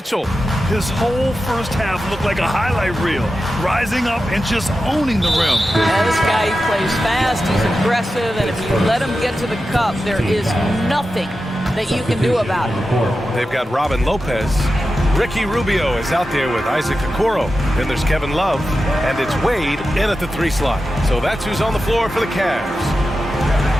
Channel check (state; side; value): normal; both; correlation 0.92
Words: His whole first half looked like a highlight reel, rising up and just owning the rim. Yeah, this guy plays fast, he's aggressive, and if you let him get to the cup, there is nothing that you can do about it. They've got Robin Lopez. Ricky Rubio is out there with Isaac Okoro. Then there's Kevin Love, and it's Wade in at the 3 slot. So that's who's on the floor for the Cavs.